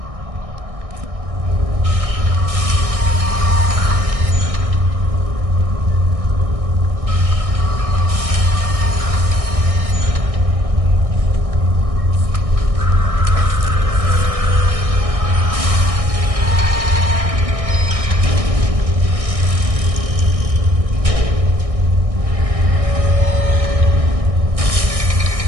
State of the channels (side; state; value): left; late; 1.6 ms